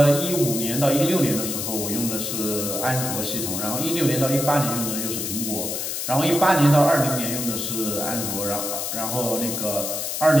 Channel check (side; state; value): left; noise; hiss, 3 dB below the sound